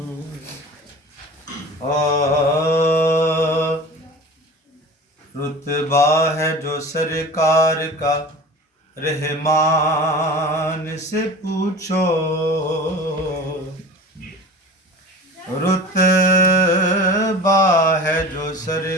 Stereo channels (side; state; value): both; normal; correlation 0.37